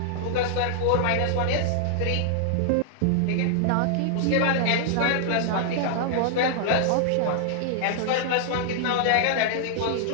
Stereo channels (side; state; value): both; different; correlation -0.01